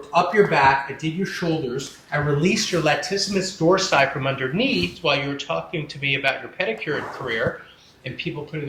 up your back, I did your shoulders, I released your latissimus dorsi from underneath while you were talking to me about your pedicure career and people putting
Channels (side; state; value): both; identical; correlation 1.00